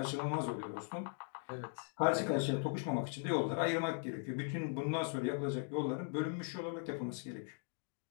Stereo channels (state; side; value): silent; right; 52 dB below the other